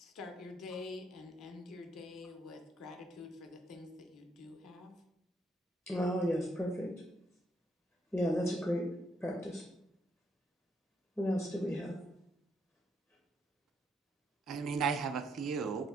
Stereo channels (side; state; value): both; normal; correlation 0.75